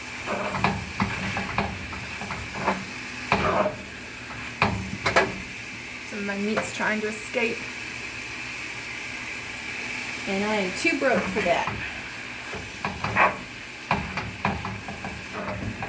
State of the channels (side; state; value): both; identical; correlation 1.00